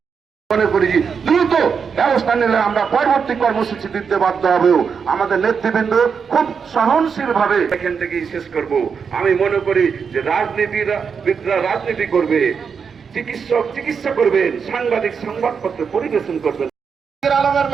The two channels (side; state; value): left; quieter; 6.2 dB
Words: মনে করি দ্রুত ব্যবস্থা নিলে আমরা পরবর্তী কর্মসূচি দিতে বাধ্য হবেও। আমাদের নেতৃবৃন্দ খুব সহনশীল ভাবে এখান থেকেই শেষ করব। আমি মনে করি যে রাজনীতিবিদরা রাজনীতি করবে, চিকিৎসক চিকিৎসা করবেন, সাংবাদিক সংবাদপত্র পরিবেশন করবেন। আলমের